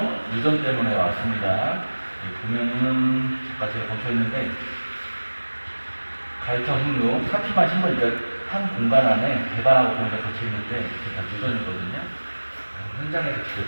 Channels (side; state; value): both; inverted; correlation -1.00